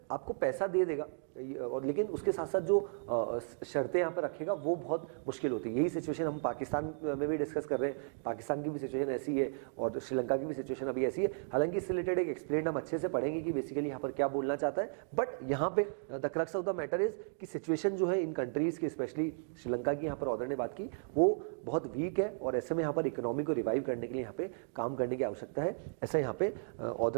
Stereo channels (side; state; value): left; silent; digital silence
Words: आपको पैसा दे देगा और लेकिन उसके साथ साथ जो शर्तें यहाँ पर रखेगा वो बहुत मुश्किल होती है। यही सिचुएशन हम पाकिस्तान में भी डिस्कस कर रहे हैं। पाकिस्तान की भी सिचुएशन ऐसी है और श्रीलंका की भी सिचुएशन अभी ऐसी है। हालांकि इससे रिलेटेड एक एक्सप्लेन हम अच्छे से पढ़ेंगे कि बेसिकली यहाँ पर क्या बोलना चाहता है। बट यहाँ पे the crux of the matter is कि सिचुएशन जो है इन कंट्रीज की, स्पेशली श्रीलंका की, यहाँ पर ऑर्डर ने बात की, वो बहुत वीक है और ऐसे में यहाँ पर इकोनॉमी को रिवाइव करने के लिए यहाँ पे काम करने की आवश्यकता है, ऐसा यहाँ पे